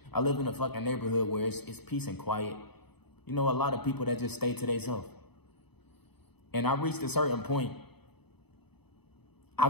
I live in a fucking neighborhood where it's peace and quiet. You know, a lot of people that just stay to themselves. And I reached a certain point. I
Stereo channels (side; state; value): right; late; 0.98 ms